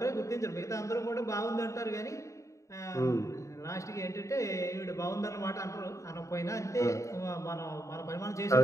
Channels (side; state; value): right; late; 0.15 ms